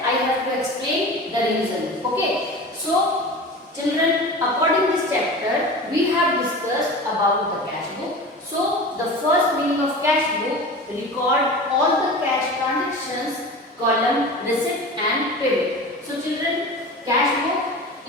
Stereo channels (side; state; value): both; normal; correlation 0.33